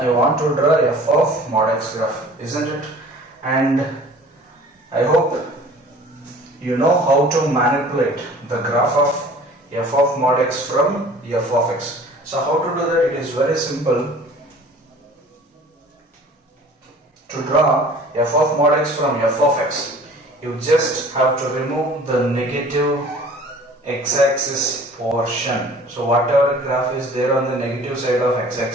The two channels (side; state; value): both; normal; correlation 0.48